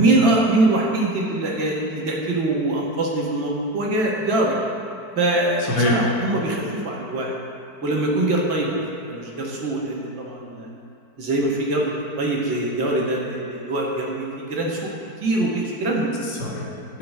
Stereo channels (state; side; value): late; right; 4.6 ms